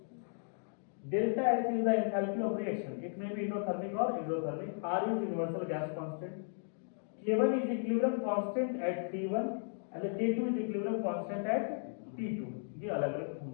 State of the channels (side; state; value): right; silent; digital silence